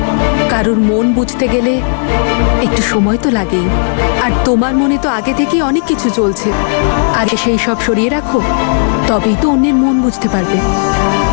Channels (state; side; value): silent; right; digital silence